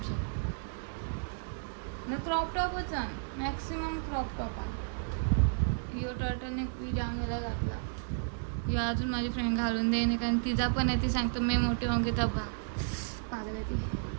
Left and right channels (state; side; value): silent; left; digital silence